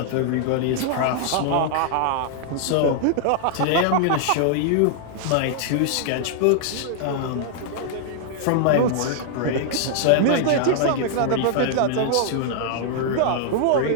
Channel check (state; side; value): different; both; correlation -0.01